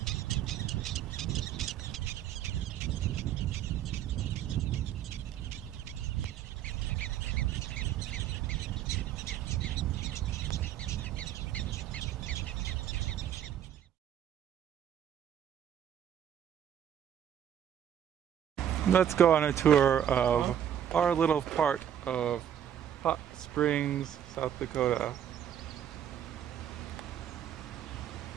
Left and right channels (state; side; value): quieter; left; 9.9 dB